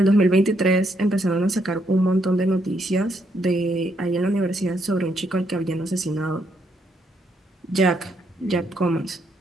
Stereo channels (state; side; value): normal; both; correlation 0.74